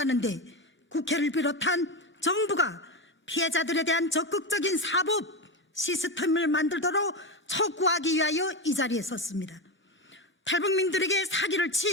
데 국회를 비롯한 정부가 피해자들에 대한 적극적인 사법 시스템을 만들도록 촉구하기 위하여 이 자리에 섰습니다. 탈북민들에게 사기를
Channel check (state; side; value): normal; both; correlation 0.16